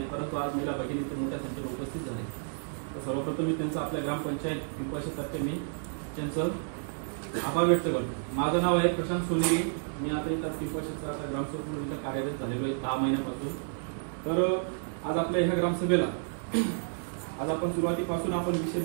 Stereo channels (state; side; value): silent; left; digital silence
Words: परंतु आज महिला भगिनी इथं मोठ्या संख्येने उपस्थित झाले. सर्वप्रथम मी त्यांचा आपल्या ग्रामपंचायत पिंपळशेततर्फे मी त्यांचं आभार व्यक्त करतो. माझं नाव आहे प्रशांत सोनेरी. मी आता इथं पिंपळशेतचा आता ग्रामसेवक म्हणून इथं कार्यरत झालेलो आहे 10 महिन्यापासून. तर आज आपल्या ह्या ग्रामसभेला आज आपण सुरुवातीपासून आपण विषय